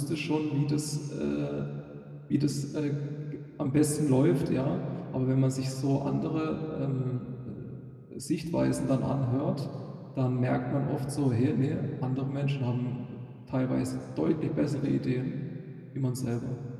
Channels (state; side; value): identical; both; correlation 1.00